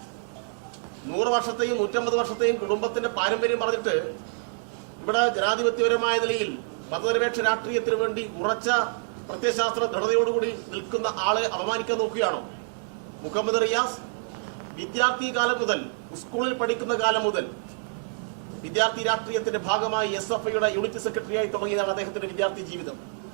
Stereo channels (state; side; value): silent; left; digital silence